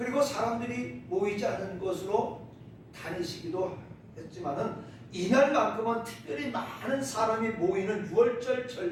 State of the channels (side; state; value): both; identical; correlation 1.00